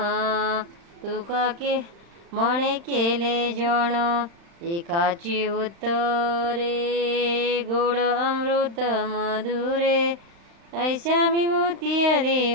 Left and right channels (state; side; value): late; left; 35 ms